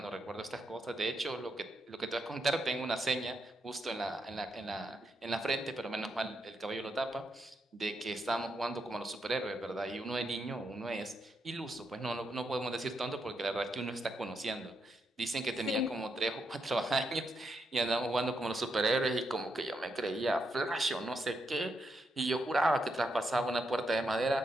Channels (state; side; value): normal; both; correlation 0.81